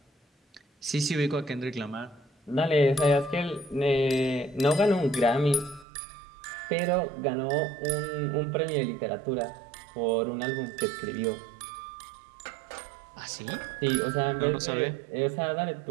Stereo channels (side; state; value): left; drops out; at 5.9 s